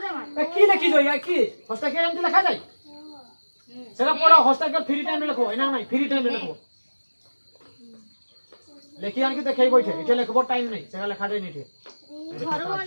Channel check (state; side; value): inverted; both; correlation -1.00